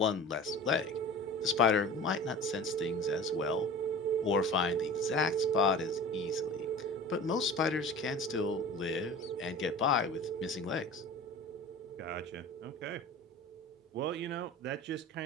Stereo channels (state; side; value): normal; both; correlation 0.37